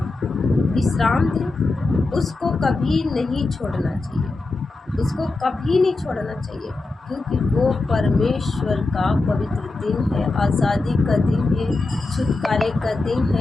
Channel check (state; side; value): quieter; right; 3.3 dB